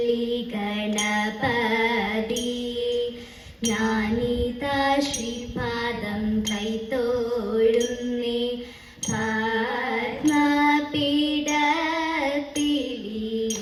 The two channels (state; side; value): identical; both; correlation 1.00